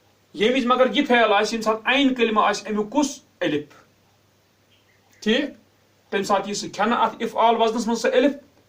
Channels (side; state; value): both; identical; correlation 1.00